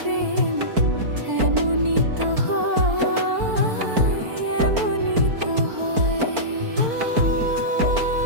এমনই তো হয়, এমনই তো হয়।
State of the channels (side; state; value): left; late; 4.4 ms